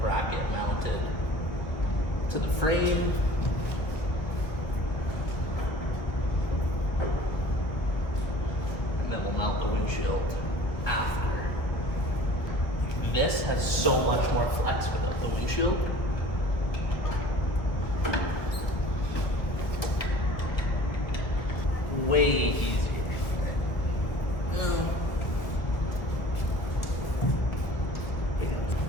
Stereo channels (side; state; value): right; late; 1.6 ms